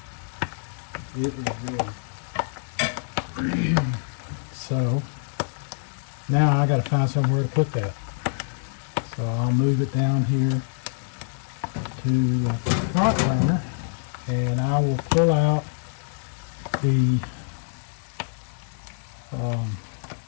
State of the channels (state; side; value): silent; right; 61 dB below the other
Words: It is ready. So, now I gotta find somewhere to put that. So I'll move it down here to the front burner, and I will pull out the